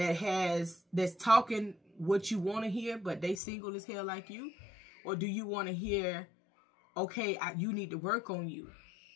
talking what you want to hear, but they single as hell like you? Or do you want to hear, okay, you need to work on you,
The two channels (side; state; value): right; drops out; at 3.4 s